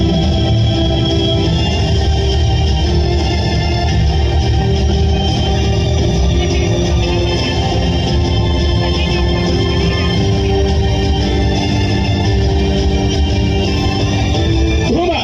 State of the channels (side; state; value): both; identical; correlation 1.00